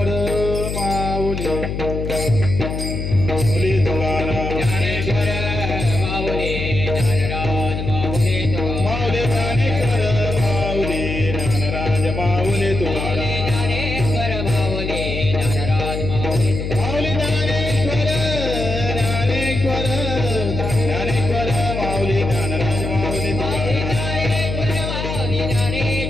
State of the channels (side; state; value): left; noise; hum, 4 dB below the sound